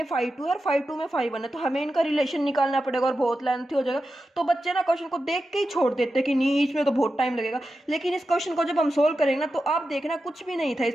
5 2 है और 5 2 में 5 1 है, तो हमें इनका रिलेशन निकालना पड़ेगा और बहुत लेंथी हो जाएगा। तो बच्चे ना क्वेश्चन को देख के ही छोड़ देते कि नहीं इसमें तो बहुत टाइम लगेगा। लेकिन इस क्वेश्चन को जब हम सोल्व करेंगे ना तो आप देखना कुछ भी नहीं था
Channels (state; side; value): normal; both; correlation 0.90